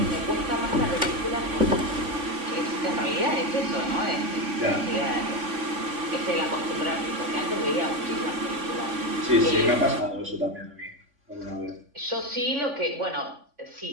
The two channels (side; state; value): left; late; 3.5 ms